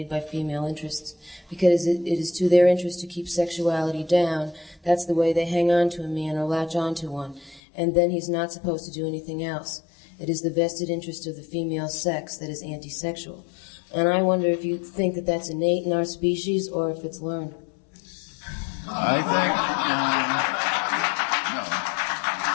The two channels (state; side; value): drops out; right; at 7.6 s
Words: by female interests because it is to their interest to keep sexuality down. That's the way they hang on to a man or latch on to one. And then he's not supposed to do anything else. It is the vested interest of the female sex that is anti-sexual. And I wonder if you think that that's innate in our species or if it's learned. I think, no.